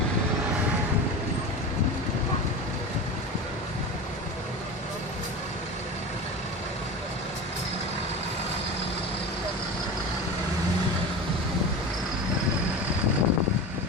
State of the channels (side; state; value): both; normal; correlation 0.29